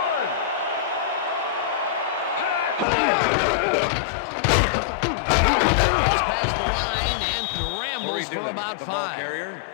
Gets past the line and rambles for about the ball 5. carrier.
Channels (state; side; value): drops out; right; at 2.9 s